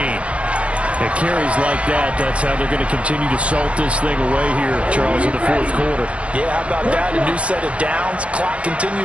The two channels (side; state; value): left; late; 0.062 ms